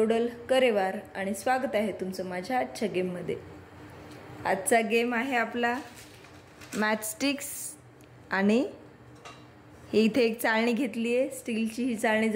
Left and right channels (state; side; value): identical; both; correlation 1.00